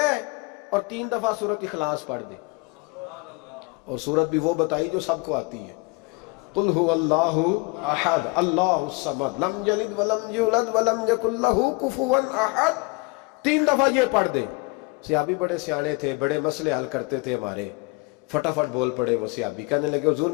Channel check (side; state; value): right; quieter; 27.3 dB